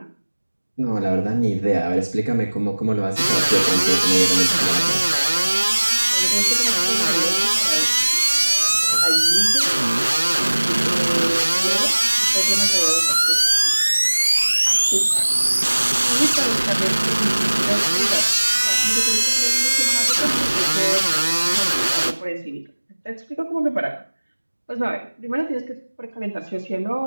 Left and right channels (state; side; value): inverted; both; correlation -1.00